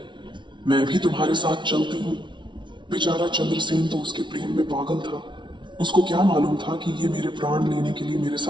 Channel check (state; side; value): late; left; 0.23 ms